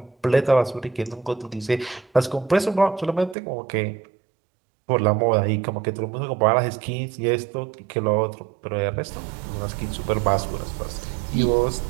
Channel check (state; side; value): drops out; left; at 3.4 s